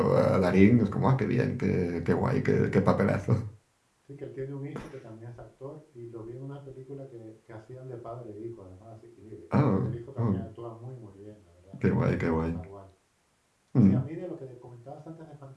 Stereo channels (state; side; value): identical; both; correlation 1.00